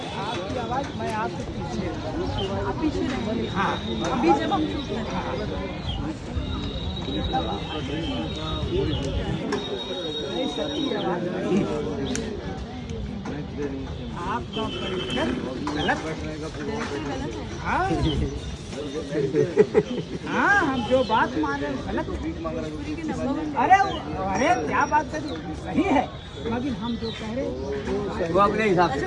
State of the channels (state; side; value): identical; both; correlation 1.00